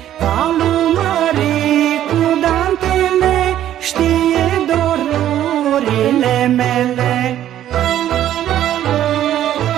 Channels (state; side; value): quieter; left; 11.8 dB